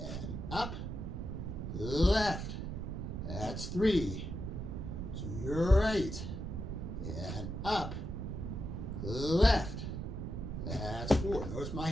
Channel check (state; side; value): noise; right; rumble, 5 dB below the sound